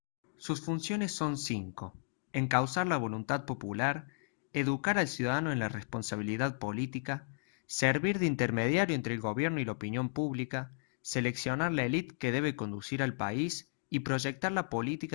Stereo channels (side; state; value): right; silent; digital silence